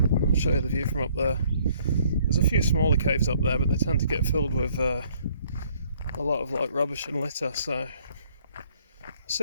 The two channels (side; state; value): both; inverted; correlation -0.63